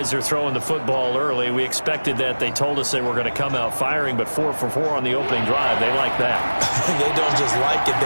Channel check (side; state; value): both; inverted; correlation -1.00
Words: they're throwing the football early. We expected that. They told us they were going to come out firing, but 4 for 4 on the opening drive. They like that. They don't just like it,